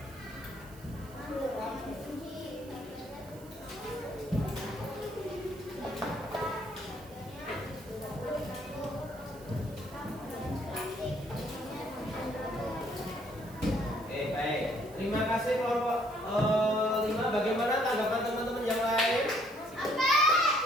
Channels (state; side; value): noise; right; hiss, 23 dB below the sound